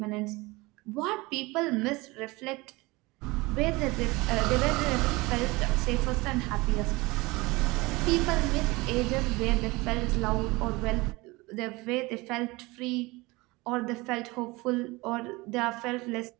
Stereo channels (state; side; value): quieter; left; 22.9 dB